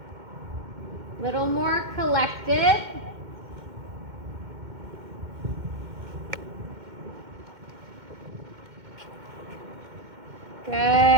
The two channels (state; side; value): late; left; 2.1 ms